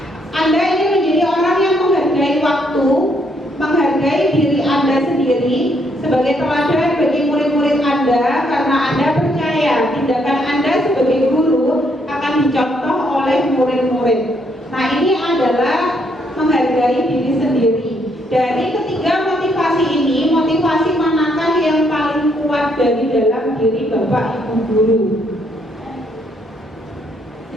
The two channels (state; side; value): normal; both; correlation 0.71